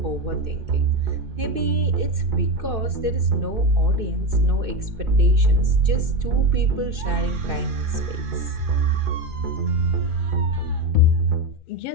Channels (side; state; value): left; late; 2.6 ms